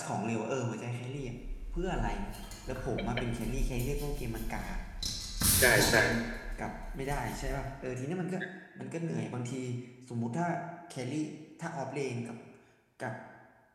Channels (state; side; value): identical; both; correlation 1.00